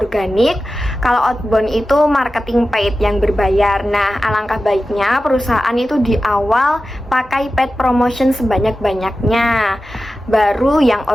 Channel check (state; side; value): normal; both; correlation 0.94